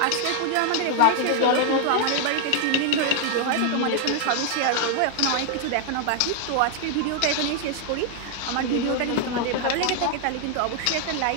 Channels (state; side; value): different; both; correlation 0.00